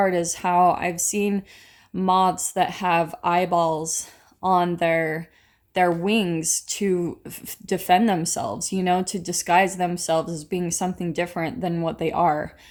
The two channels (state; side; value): identical; both; correlation 1.00